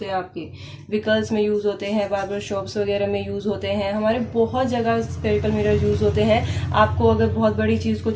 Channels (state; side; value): identical; both; correlation 1.00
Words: हैं, आपके व्हीकल्स में यूज़ होते हैं, बार्बर शॉप्स वगैरह में यूज़ होते हैं, हमारे बहुत जगह सफेरिकल मिरर यूज़ होते हैं। आपको अगर बहुत बड़ी चीज़ को